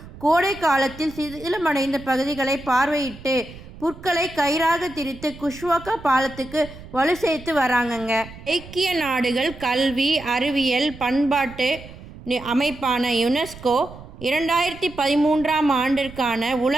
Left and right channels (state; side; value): noise; right; rumble, 17 dB below the sound